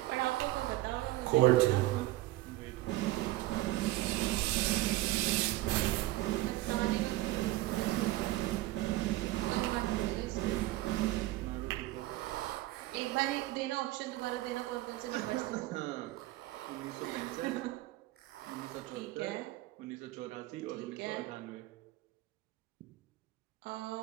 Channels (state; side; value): quieter; left; 17.4 dB